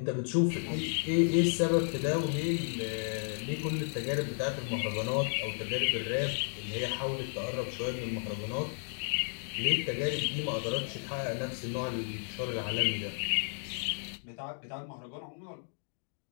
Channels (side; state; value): right; silent; 56 dB below the other